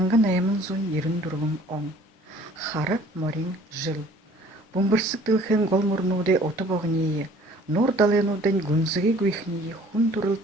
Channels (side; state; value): both; normal; correlation 0.53